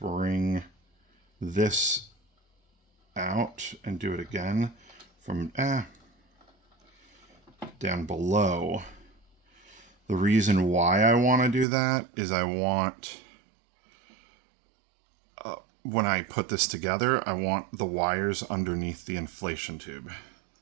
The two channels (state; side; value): drops out; left; at 11.7 s